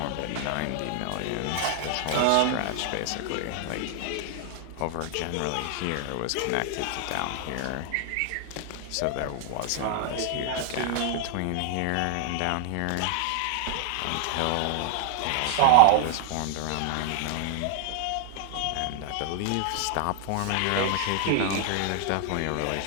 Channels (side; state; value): both; different; correlation 0.00